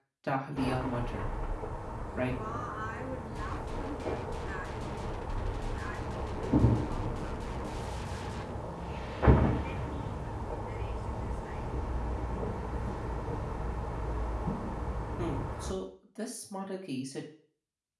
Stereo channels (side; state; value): both; identical; correlation 1.00